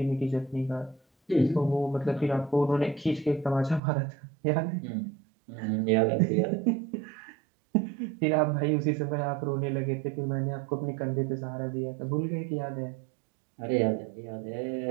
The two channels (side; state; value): left; drops out; at 3.8 s